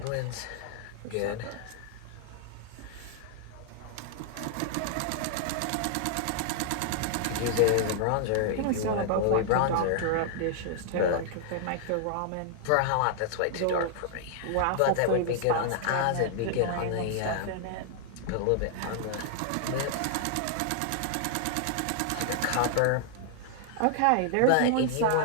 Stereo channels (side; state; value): both; different; correlation 0.00